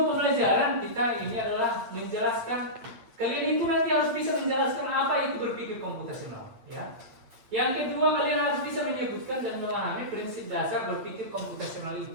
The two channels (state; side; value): late; left; 8.6 ms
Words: pembelajaran kita ini adalah menjelaskan kalian itu nanti harus bisa menjelaskan apa itu berpikir komputasional, ya. Yang kedua, kalian harus bisa menyebutkan dan memahami prinsip dasar berpikir komputasional